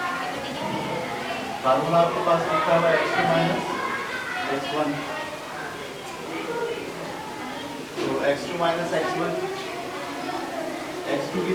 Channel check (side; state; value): both; identical; correlation 1.00